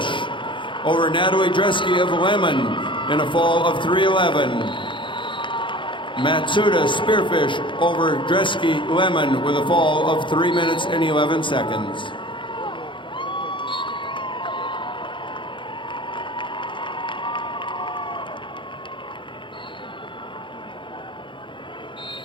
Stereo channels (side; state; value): right; late; 0.24 ms